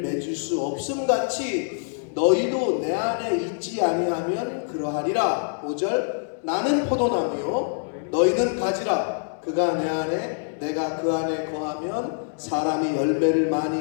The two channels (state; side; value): silent; right; digital silence